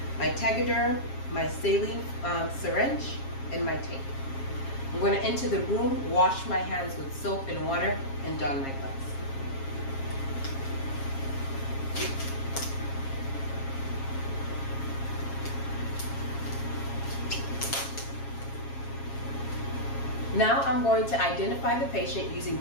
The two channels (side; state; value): right; late; 7.4 ms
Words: my Tegaderm, my saline syringe, and my tape. I'm going to enter the room, wash my hands with soap and water, and don my gloves. Now I'm going to identify the patient using